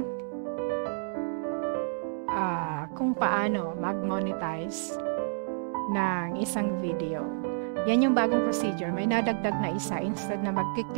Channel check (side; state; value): left; silent; digital silence